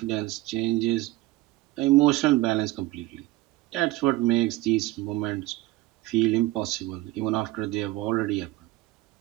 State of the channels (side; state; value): left; quieter; 17.7 dB